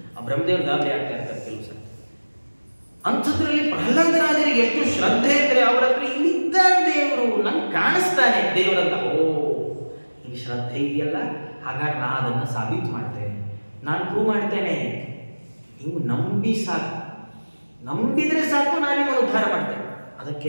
ಆ ಬ್ರಹ್ಮದೇವ್ರ ಗಾಬರಿ ಆಗ್ತಾ ಇರ್ತಾರೆ ಕೆಲವು ಸರ್ತಿ. ಅಂಥದ್ರಲ್ಲಿ ಪ್ರಹ್ಲಾದರಾಜರಿಗೆ ಎಷ್ಟು ಶ್ರದ್ಧೆ ಇದ್ರೆ, ಅವ್ರ ಹತ್ರ ಇಲ್ಲಿದ್ದಾನೆ ದೇವರು, ನನ್ಗೆ ಕಾಣಿಸ್ತಾನೆ ದೇವರಂತ. ಓ, ಈ ಶ್ರದ್ಧೆ ಇದೆಯಲ್ಲ, ಹಾಗಾಗಿ ನಾ ಅದನ್ನ ಸಾಬೀತು ಮಾಡ್ತೇನೆ, ನಾನು ಪ್ರೂವ್ ಮಾಡ್ತೇನೆ. ನೀವು ನಂಬಿ ಸಾಕು, ನಂಬಿದ್ರೆ ಸಾಕು, ನಾನು ನಿಮ್ಮನ್ನು ಉದ್ಧಾರ ಮಾಡ್ತೇನೆ. ಅದಕ್ಕೆ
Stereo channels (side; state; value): both; inverted; correlation -1.00